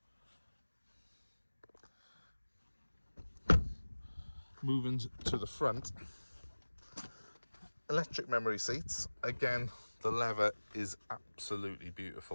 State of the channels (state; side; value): inverted; both; correlation -1.00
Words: Moving to the front, electric memory seats. Again, the leather is absolutely